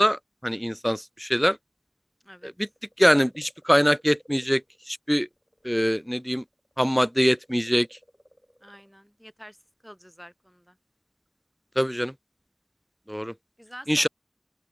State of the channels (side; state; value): both; identical; correlation 1.00